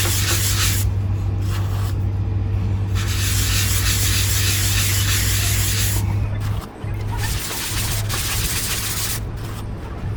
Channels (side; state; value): both; identical; correlation 1.00